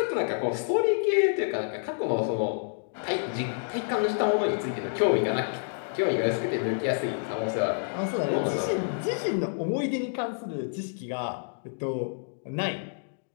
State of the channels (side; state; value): right; silent; digital silence